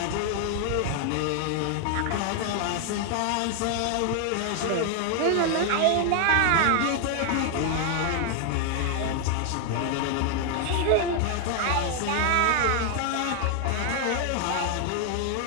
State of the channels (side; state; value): both; different; correlation 0.00